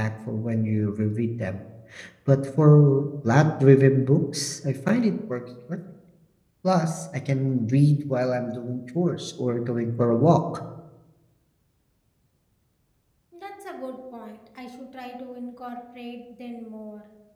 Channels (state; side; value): identical; both; correlation 1.00